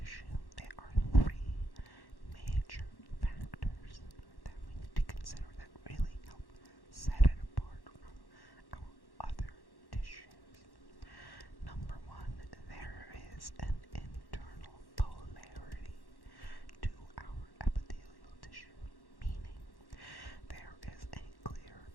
there are three major factors that we need to consider that really help set it apart from our other tissues. Number one, there is an internal polarity to our epithelial tissue, meaning there is a clear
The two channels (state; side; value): late; right; 1.1 ms